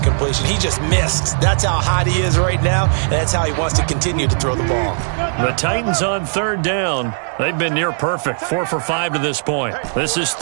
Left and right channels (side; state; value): left; silent; digital silence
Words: He just missed. That's how hot he is right now, and that's how he wants to continue to throw the ball. The Titans on 3rd down. They've been near perfect, 4 for 5 to this point. This is